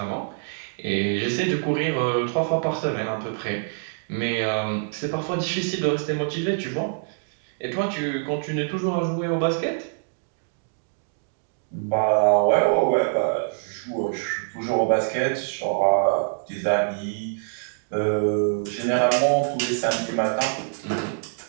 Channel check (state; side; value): silent; left; digital silence